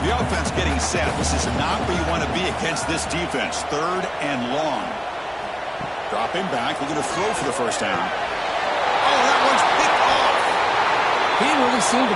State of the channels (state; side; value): identical; both; correlation 1.00